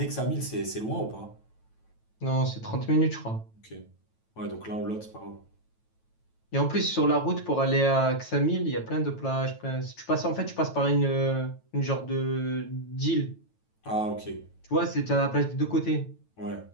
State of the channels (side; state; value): right; late; 9.1 ms